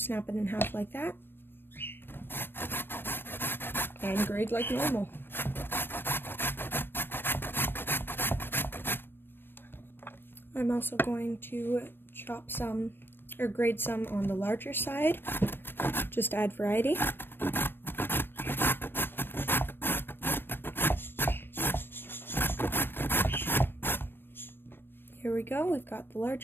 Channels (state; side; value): late; right; 0.10 ms